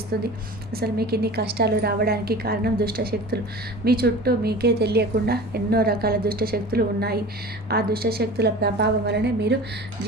అసలు మీకు ఇన్ని కష్టాలు రావడానికి కారణం దుష్టశక్తులు. మీ చుట్టూ మీకే తెలియకుండా ఎన్నో రకాల దుష్టశక్తులు ఉన్నాయి. ఆ దుష్టశక్తుల ప్రభావం వలనే మీరు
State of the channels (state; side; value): normal; both; correlation 0.37